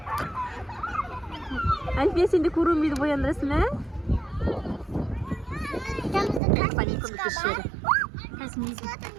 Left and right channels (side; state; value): left; drops out; at 6.4 s